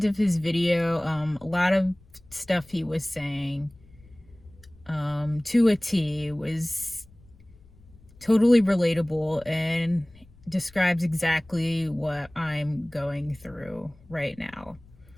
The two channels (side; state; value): left; noise; rumble, 26 dB below the sound